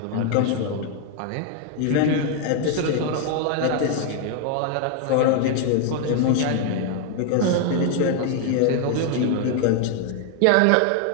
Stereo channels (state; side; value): different; both; correlation 0.00